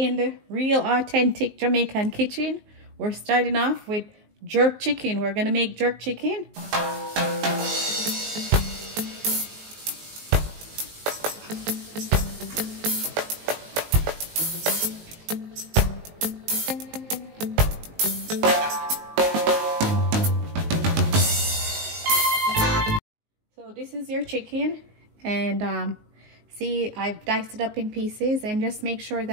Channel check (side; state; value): left; late; 19 ms